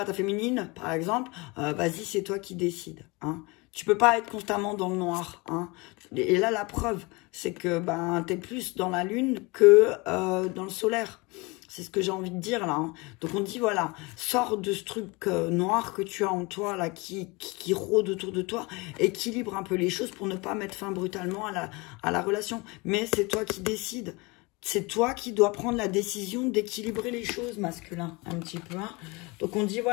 ta féminine, par exemple, vas-y, c'est toi qui décides. Hein. Tu peux pas être constamment dans le noir. Hein. Et là, la preuve, c'est que tu es plus dans la lune que dans le solaire. C'est ce que j'ai envie de dire là. Hein. Donc on dit voilà, sors de ce truc noir que tu as en toi là, qui rôde autour de toi, équilibre un peu les choses pour ne pas mettre fin brutalement à la relation. Mais c'est toi qui décides. C'est toi qui dois prendre la décision d'équilibrer les choses, masculin, un petit peu. Hein. Donc on dit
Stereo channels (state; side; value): quieter; right; 25.6 dB